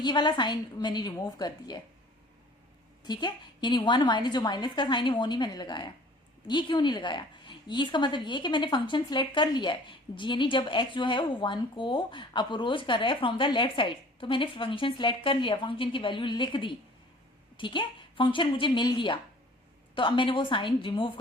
वाला साइन मैंने रिमूव कर दिया है। ठीक है, यानी 1 माइनस, जो माइनस का साइन है वो नहीं मैंने लगाया। ये क्यों नहीं लगाया, ये इसका मतलब ये कि मैंने फंक्शन सिलेक्ट कर लिया है, यानी जब x जो है वो 1 को अप्रोच कर रहा है फ्रॉम द लेफ्ट साइड, तो मैंने फंक्शन सिलेक्ट कर लिया, फंक्शन की वैल्यू लिख दी। ठीक है, फंक्शन मुझे मिल गया, तो अब मैंने वो साइन रिमूव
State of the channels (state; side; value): normal; both; correlation 0.49